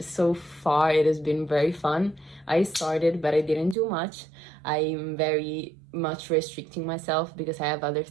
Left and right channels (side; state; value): left; drops out; at 3.8 s